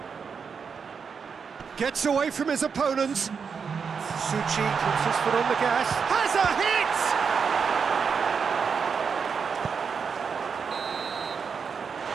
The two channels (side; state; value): left; quieter; 6.0 dB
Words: Gets away from his opponents. Suchi puts his foot on the gas. Has a hit!